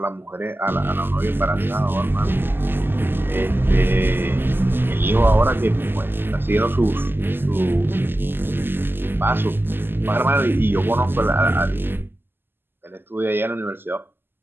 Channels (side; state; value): left; late; 0.099 ms